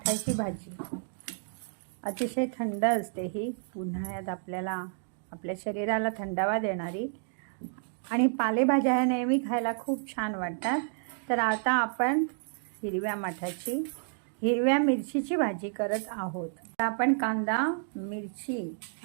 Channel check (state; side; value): silent; left; digital silence